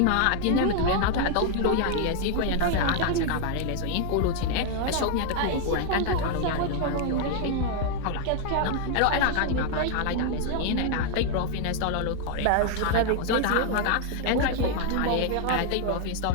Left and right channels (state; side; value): different; both; correlation 0.00